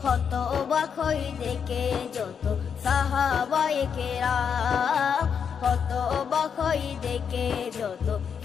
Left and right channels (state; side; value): quieter; right; 7.0 dB